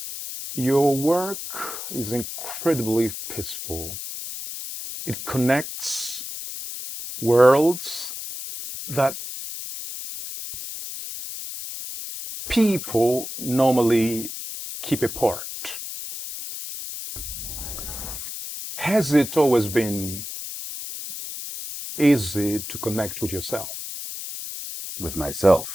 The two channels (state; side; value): noise; left; hiss, 8 dB below the sound